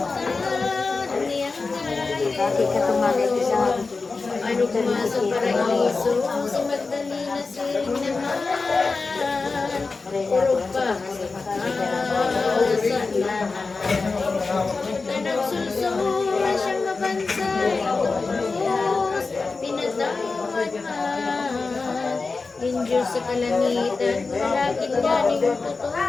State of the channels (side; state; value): right; quieter; 4.1 dB